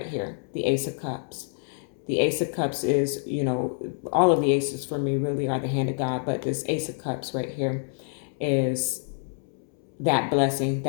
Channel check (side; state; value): right; silent; 60 dB below the other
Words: here, the Ace of Cups. The Ace of Cups is, all of the aces for me really are the hand of God, but this Ace of Cups right here is that blessing,